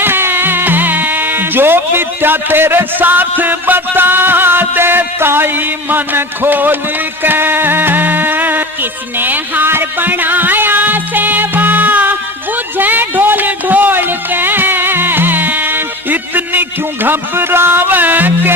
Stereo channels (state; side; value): normal; both; correlation 0.33